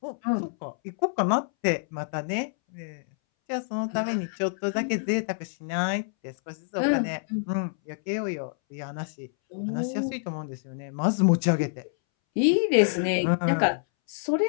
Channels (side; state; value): right; silent; 60 dB below the other